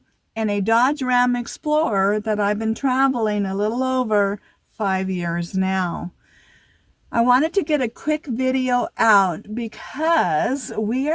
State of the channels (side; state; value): both; identical; correlation 1.00